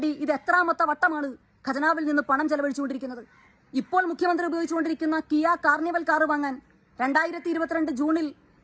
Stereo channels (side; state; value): both; identical; correlation 1.00